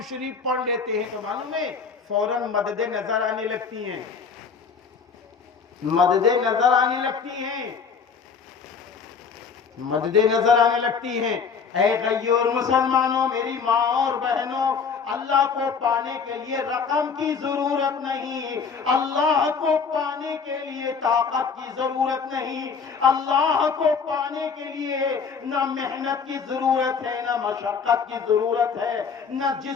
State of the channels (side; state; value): right; quieter; 5.8 dB